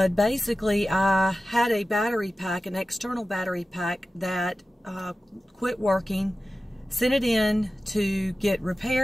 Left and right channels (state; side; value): normal; both; correlation 0.95